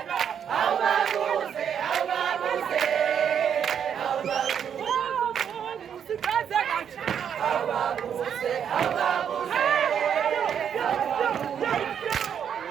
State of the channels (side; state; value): left; quieter; 8.2 dB